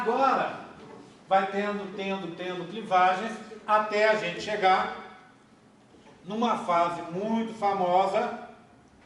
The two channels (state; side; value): identical; both; correlation 1.00